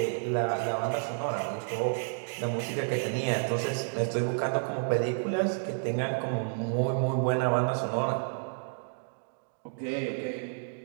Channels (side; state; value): left; silent; digital silence